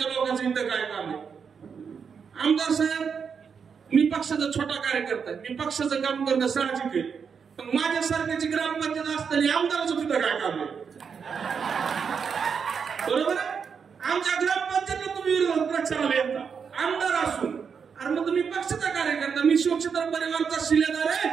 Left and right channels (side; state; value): left; quieter; 6.4 dB